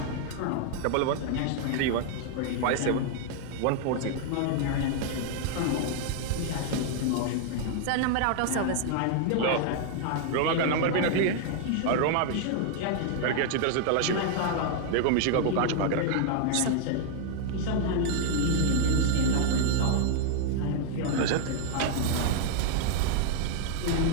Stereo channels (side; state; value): both; different; correlation 0.00